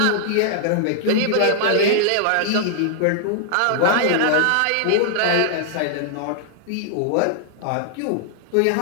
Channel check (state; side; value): different; both; correlation -0.01